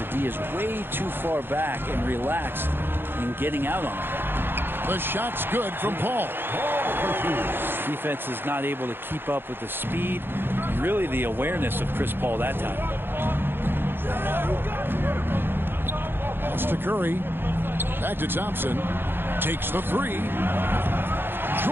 D is way too far back and relaxed in getting out on it. The shot's good from Paul. Defense is not able to keep up with the speed and really the awareness of Chris Paul that time. Pass to Curry. Back to Thompson. Takes the three.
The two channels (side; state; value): left; late; 0.10 ms